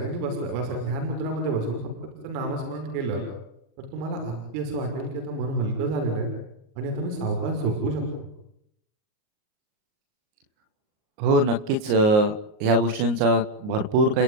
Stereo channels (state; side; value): late; left; 38 ms